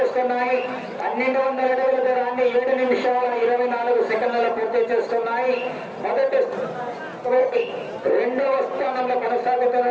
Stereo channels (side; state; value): both; identical; correlation 1.00